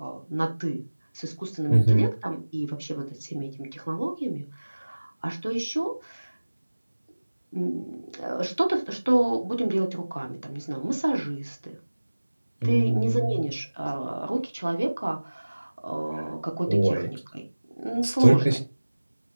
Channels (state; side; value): inverted; both; correlation -1.00